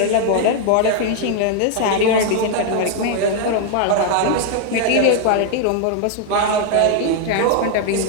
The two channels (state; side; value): different; both; correlation 0.00